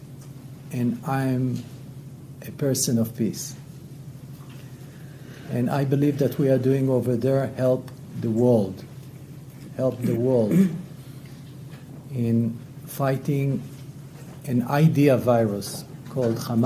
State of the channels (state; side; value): identical; both; correlation 1.00